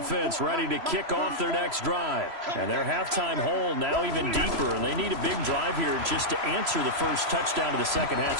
ready to kick off their next drive. And their halftime hole now even deeper. And they need a big drive here just to answer the first touchdown of the second half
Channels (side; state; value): left; late; 3.0 ms